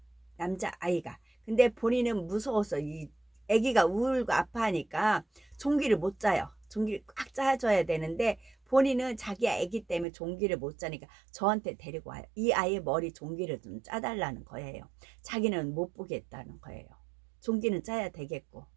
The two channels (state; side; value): drops out; left; at 10.1 s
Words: 남자아이가. 근데 본인은 무서워서 이 아기가 울고 아파하니까 종기를 못 짜요. 종기를 꽉 짜줘야 되는데 본인은 자기 아기 때문에 종기를 못 짜니까 저한테 데리고 와요. 이 아이의 머리 종기를 좀 짜달라는 거예요. 자기는 못 보겠다는 거예요. 종기는 짜야 되겠고.